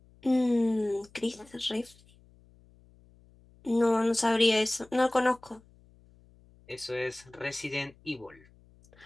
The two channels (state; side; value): noise; left; hum, 28 dB below the sound